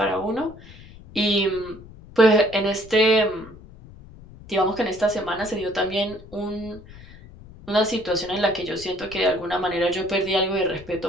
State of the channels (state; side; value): noise; left; rumble, 19 dB below the sound